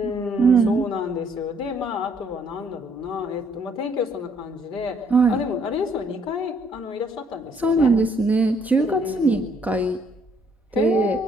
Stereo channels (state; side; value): normal; both; correlation 0.66